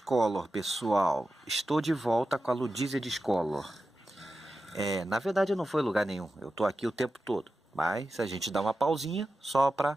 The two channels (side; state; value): both; normal; correlation 0.92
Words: pessoal. Estou de volta com a Ludícia Discolor. Na verdade não foi lugar nenhum, eu tô aqui o tempo todo. Mas a gente dá uma pausinha só para